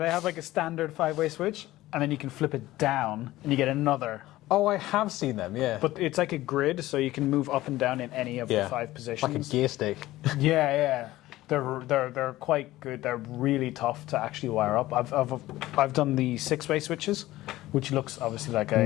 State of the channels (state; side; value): quieter; right; 16.6 dB